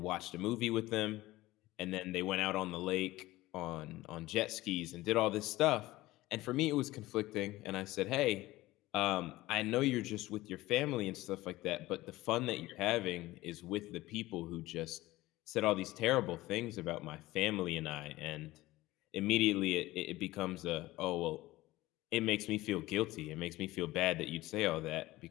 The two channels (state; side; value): quieter; right; 18.0 dB